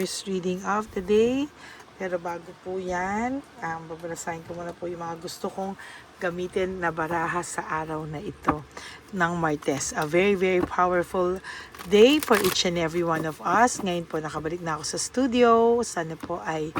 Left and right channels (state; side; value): identical; both; correlation 1.00